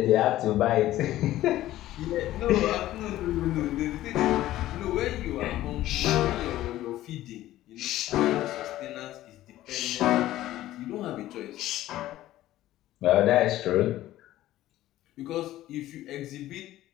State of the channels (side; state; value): right; quieter; 14.7 dB